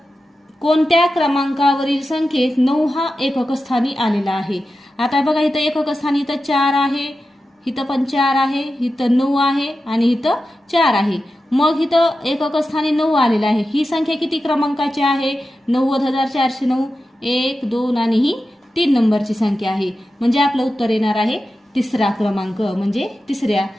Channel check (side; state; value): both; normal; correlation 0.92